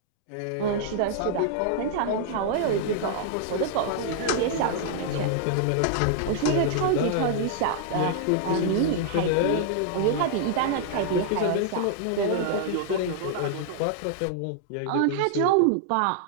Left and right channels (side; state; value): both; different; correlation -0.01